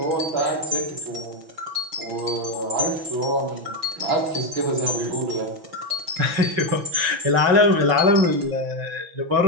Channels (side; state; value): left; late; 6.1 ms